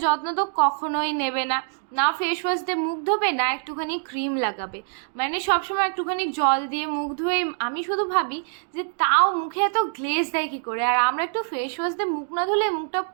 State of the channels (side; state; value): left; silent; digital silence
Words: যত্ন তো কখনোই নেবে না, না ফেস ওয়াশ দিয়ে মুখ ধোবে, না একটুখানি ক্রিম লাগাবে, মানে সবসময় একটুখানি জল দিয়ে মুখ ধুয়ে। আমি শুধু ভাবি যে তাও মুখে এত গ্লেজ দেয় কী করে, আর আমরা একটু ফেস ওয়াশ দিয়ে মুখ না ধুলে মুখটা